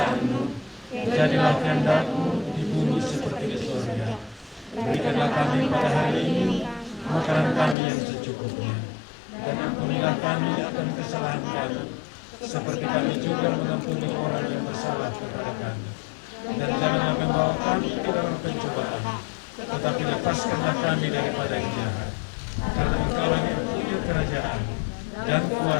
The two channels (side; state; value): right; drops out; at 7.8 s